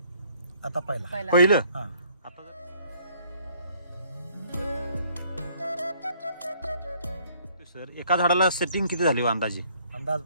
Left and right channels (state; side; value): inverted; both; correlation -0.62